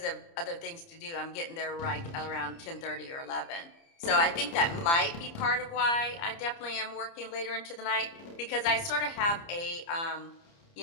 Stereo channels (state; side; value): late; right; 30 ms